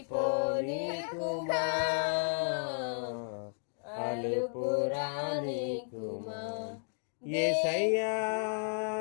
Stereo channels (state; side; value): silent; right; digital silence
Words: కుమా, అలుపురాని కుమా. యేసయ్యా